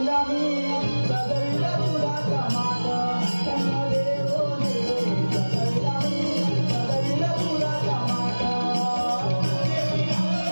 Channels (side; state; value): both; inverted; correlation -1.00